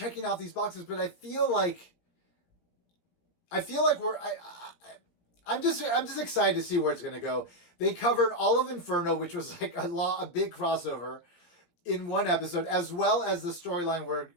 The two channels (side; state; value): right; late; 17 ms